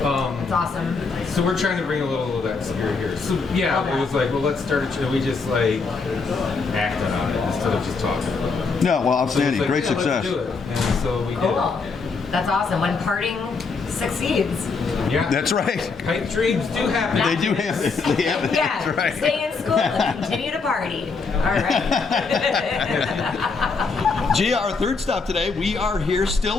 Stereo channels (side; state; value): right; quieter; 4.6 dB